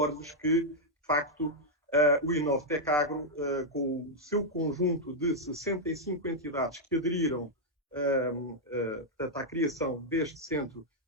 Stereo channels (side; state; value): both; normal; correlation -0.03